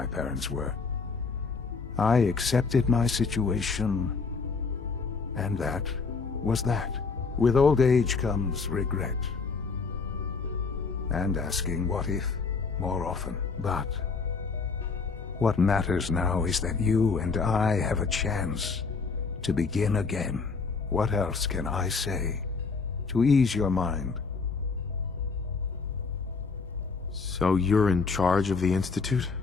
parents were. I accepted my situation, and that was that. With old age comes regret. And asking what if more often. But what matters now is that you and I have a chance to begin again. What else can I say to ease your mind? So you're in charge of the Institute?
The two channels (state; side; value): quieter; right; 4.7 dB